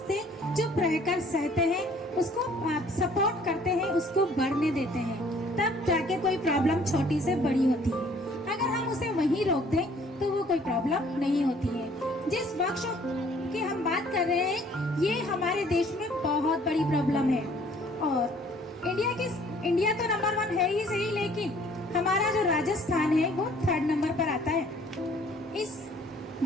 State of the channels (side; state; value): both; normal; correlation 0.57